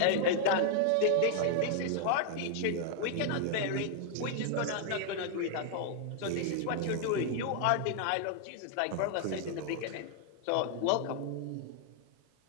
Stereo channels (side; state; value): both; different; correlation 0.00